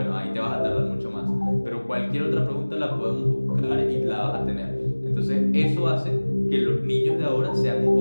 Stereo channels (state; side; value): inverted; both; correlation -1.00